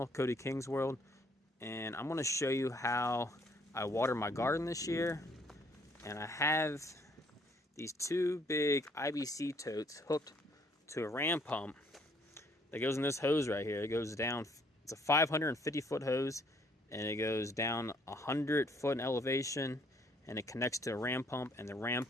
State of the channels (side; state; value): both; normal; correlation 0.64